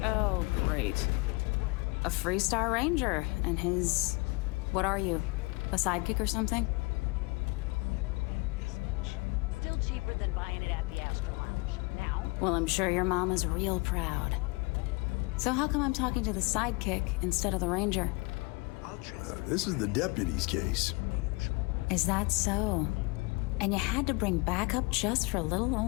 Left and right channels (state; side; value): quieter; right; 27.5 dB